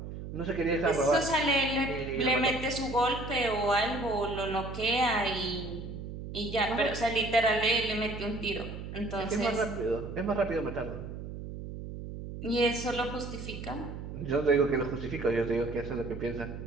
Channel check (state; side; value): noise; right; hum, 9 dB below the sound